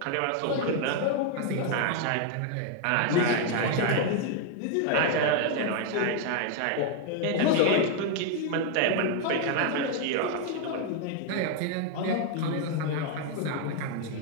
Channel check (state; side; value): different; both; correlation 0.00